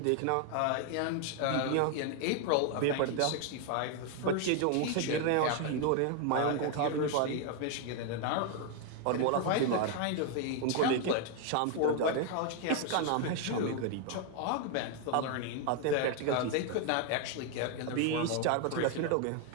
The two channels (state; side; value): different; both; correlation 0.01